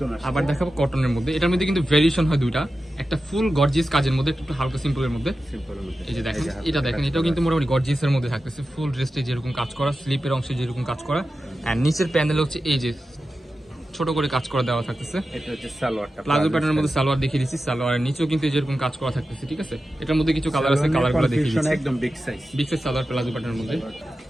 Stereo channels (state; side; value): normal; both; correlation 0.92